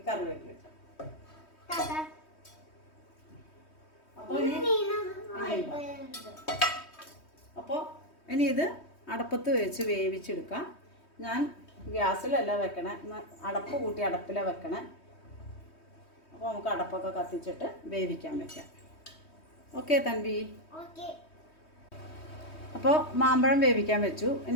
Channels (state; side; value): late; right; 3.2 ms